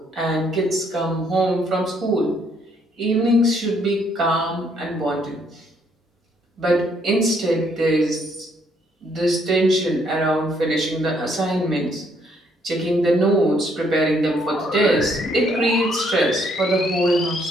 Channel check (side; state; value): both; normal; correlation 0.69